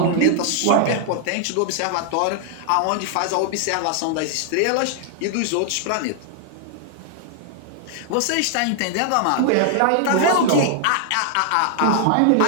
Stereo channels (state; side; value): different; both; correlation 0.00